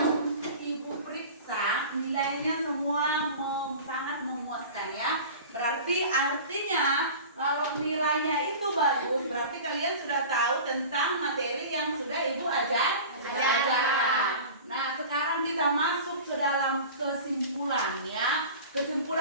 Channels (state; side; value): inverted; both; correlation -0.37